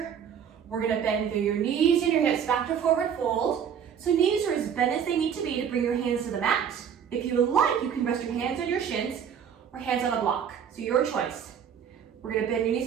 We're gonna bend through your knees and your hips back to forward fold. So knees are as bent as they need to be to bring your hands to the mat. If you would like, you can rest your hands on your shins or hands on a block, so your choice. We're gonna bend your knees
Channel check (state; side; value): quieter; left; 8.0 dB